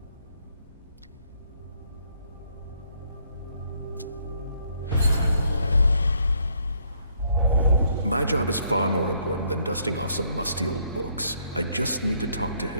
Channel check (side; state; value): both; inverted; correlation -0.68